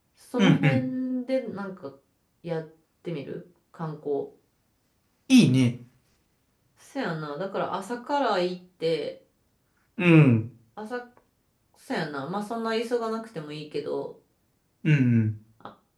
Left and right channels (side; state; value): both; identical; correlation 1.00